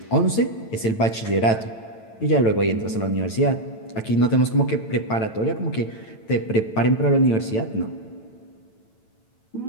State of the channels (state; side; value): late; right; 9.0 ms